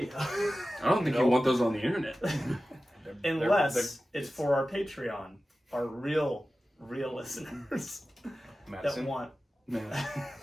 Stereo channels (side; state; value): both; normal; correlation 0.95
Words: I don't think you want those on the internet. unless it's for our Patreon, our real listeners Madison. that want Man.